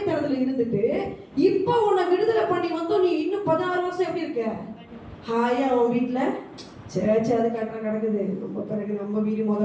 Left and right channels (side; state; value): both; identical; correlation 1.00